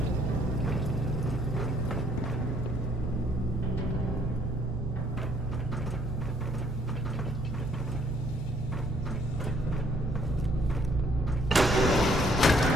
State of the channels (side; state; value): both; normal; correlation 0.65